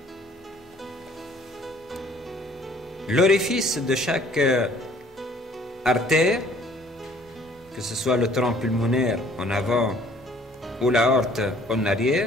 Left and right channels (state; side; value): normal; both; correlation 0.57